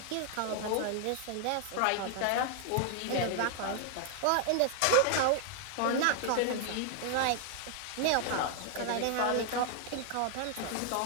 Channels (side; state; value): both; different; correlation 0.00